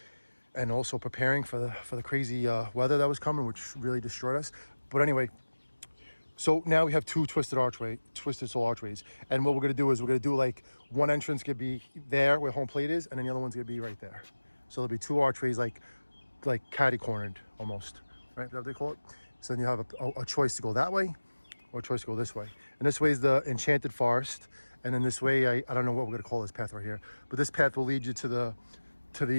and also preparing for the crazy weather that was coming, which really destroyed us. But anyway, so now we have two Twisted Soul Archways, and what we're gonna do is we're gonna do like one entrance could be there where home plate is, and then the other one's gonna be right there. So there'll be two archways like catty cornered almost, right? Is that what they call it? So then you have a choice to go that way or a choice to go this way. And this way is the Enchanted Forest, and then this way I don't know what we're gonna call this path right here, but this path will lead you to the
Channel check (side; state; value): both; inverted; correlation -1.00